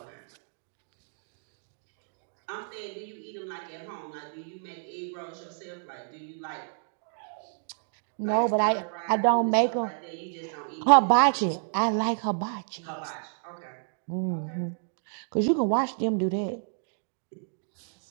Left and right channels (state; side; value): silent; left; digital silence